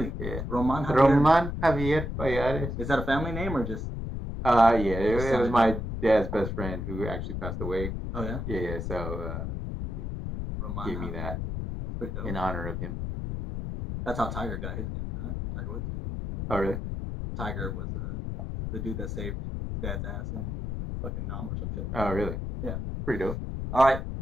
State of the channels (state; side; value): noise; left; rumble, 4 dB below the sound